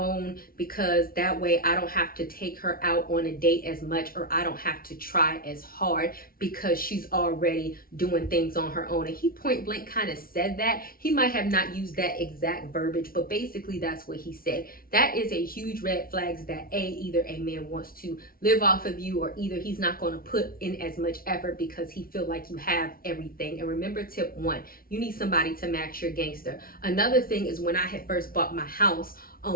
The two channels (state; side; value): late; right; 0.43 ms